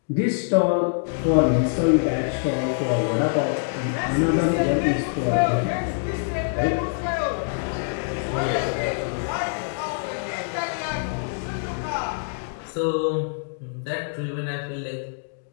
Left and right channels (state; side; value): silent; right; digital silence